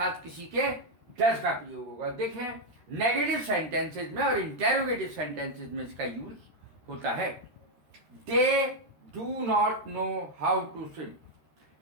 किसी के डज का प्रयोग होगा। देखें, नेगेटिव सेंटेंसेज में और इंटेरोगेटिव सेंटेंसेज में इसका यूज होता है। They do not know how to swim,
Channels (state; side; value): late; left; 13 ms